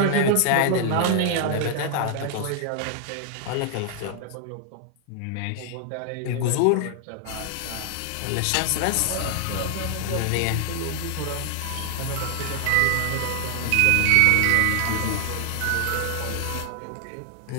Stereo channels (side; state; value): both; different; correlation 0.00